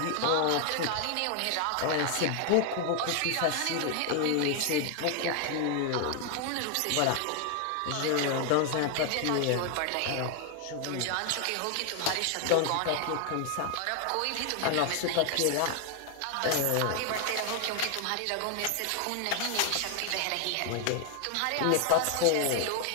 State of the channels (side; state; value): both; different; correlation 0.01